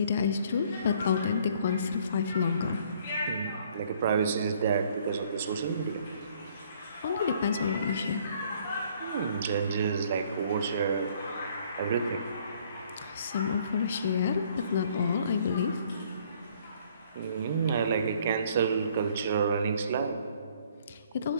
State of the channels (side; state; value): both; inverted; correlation -0.61